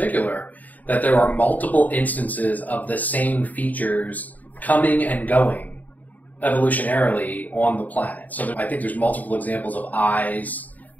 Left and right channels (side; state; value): right; late; 0.078 ms